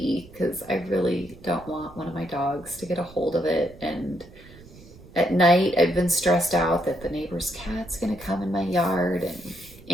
because I really don't want one of my dogs to get a hold of it. And at night, I've been stressed out that the neighbor's cat's gonna come in my yard. And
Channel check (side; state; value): right; noise; rumble, 21 dB below the sound